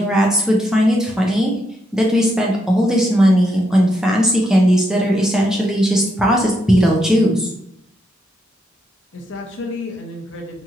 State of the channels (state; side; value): normal; both; correlation 0.80